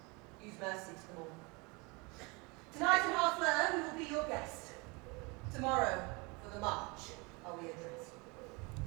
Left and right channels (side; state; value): left; quieter; 27.9 dB